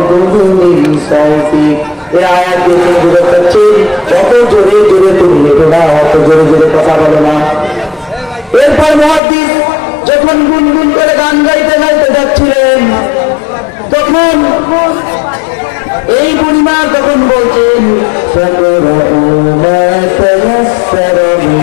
সাউতিক। এই আয়াত দিয়ে বুঝতে পারছি যত জোরে জোরে তুমি লেখো না, অত জোরে জোরে কথা বলো না। এরপর মুহাদ্দিস যখন গুনগুন করে গান গাইতে গাইতে যাচ্ছিলেন, তখন এই বুড়িমা তখন বলছেন,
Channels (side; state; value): right; drops out; at 9.2 s